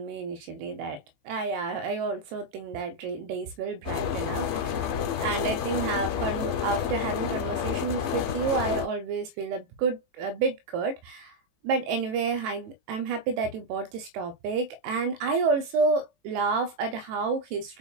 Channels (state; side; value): late; left; 18 ms